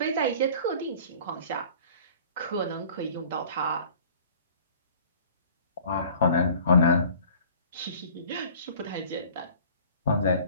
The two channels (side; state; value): both; inverted; correlation -0.48